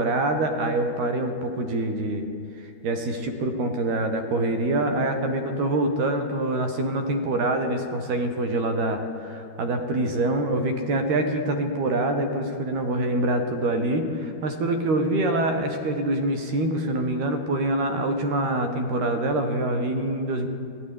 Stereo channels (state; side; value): late; left; 13 ms